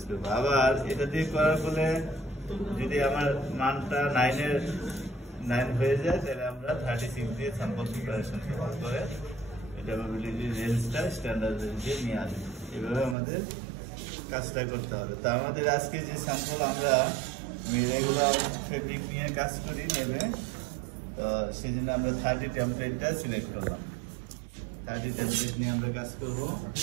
করবো। আবার এটা দিয়ে করার ফলে যদি আমার মানটা 9 হয়ে যায় তাহলে আমরা 36 দিয়ে স্যাম্পল প্রিপারেশন করে ড্যাপাবিলিটি রেঞ্জটা স্ট্যান্ডার্ড রেঞ্জে নিয়ে আসবো। এভাবে আমাদের কাজটা করতে হবে। তো আমাদের আজকে যে স্যাম্পল আমরা রেগুলার ফেব্রিক নিয়ে কাজ করি নেবে, তো সেই জন্য আমরা 30 টেমপ্লেটটা সিলেক্ট করলাম। 30 টেমপ্লেট নিয়ে আমরা কাজ করবো।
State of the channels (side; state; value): left; drops out; at 13.2 s